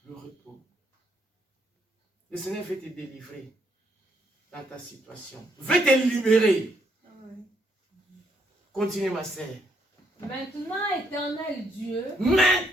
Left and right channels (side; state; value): both; normal; correlation 0.73